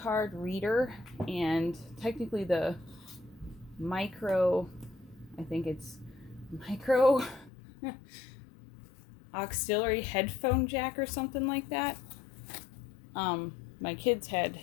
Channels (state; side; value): drops out; right; at 7.5 s